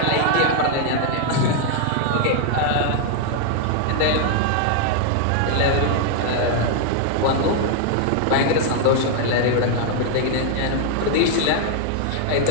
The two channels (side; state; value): both; different; correlation 0.00